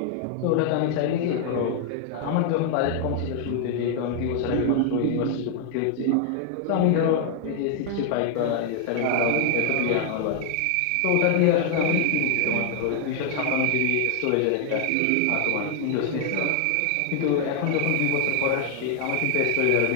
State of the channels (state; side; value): different; both; correlation 0.00